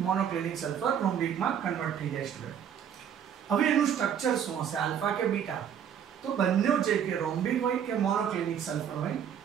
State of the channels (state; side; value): quieter; left; 8.7 dB